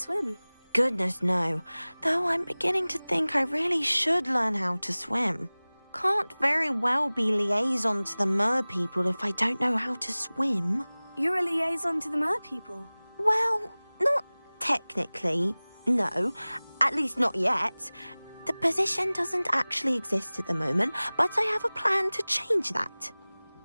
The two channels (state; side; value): inverted; both; correlation -1.00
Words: Goodness, no. Though I'm beginning to think I really should learn how to swim. Can't very well be liaison to the mer people if I don't know how to swim. You're a liaison to the mer people? Well, not technically, no. At least not yet. The position doesn't actually exist at the moment, but I have a plan to change that.